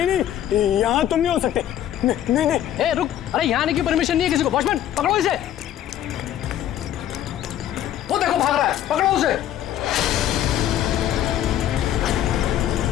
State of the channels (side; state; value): right; quieter; 11.5 dB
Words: नहीं, यहाँ तुम नहीं हो सकते। नहीं नहीं नहीं। ए, रुक, अरे यहाँ आने की परमिशन नहीं है किसी को। वॉचमैन, पकड़ो इसे। वो देखो भाग रहा है, पकड़ो उसे।